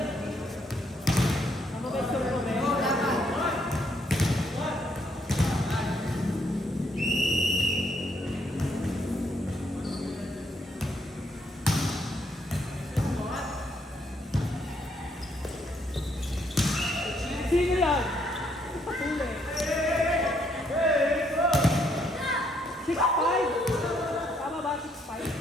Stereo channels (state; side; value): normal; both; correlation 0.71